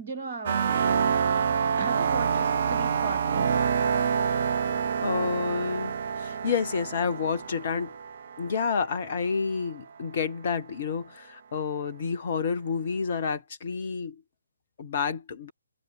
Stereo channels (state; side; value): inverted; both; correlation -0.69